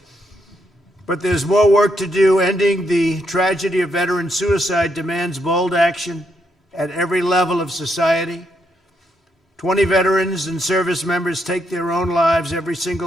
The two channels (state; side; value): normal; both; correlation 0.78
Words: But there's more work to do. Ending the tragedy of veteran suicide demands bold action at every level of society. 20 veterans and service members take their own lives every